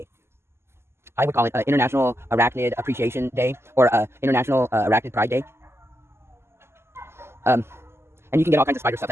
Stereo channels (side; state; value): left; late; 0.12 ms